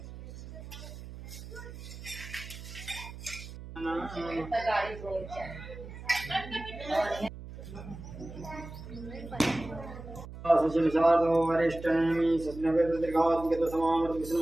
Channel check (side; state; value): right; noise; hum, 13 dB below the sound